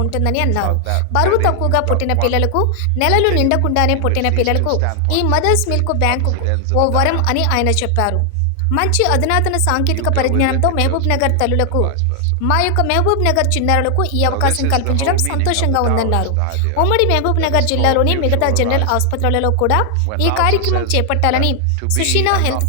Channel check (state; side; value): different; both; correlation 0.00